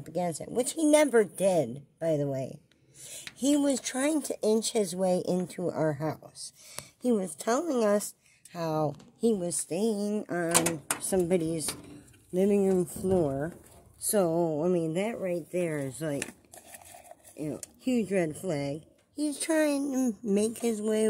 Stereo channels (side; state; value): both; identical; correlation 1.00